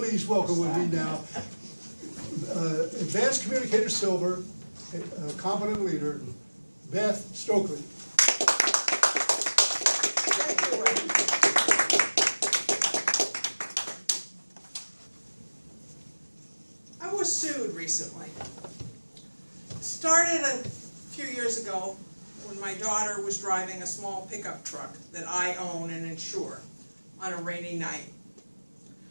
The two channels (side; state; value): both; inverted; correlation -1.00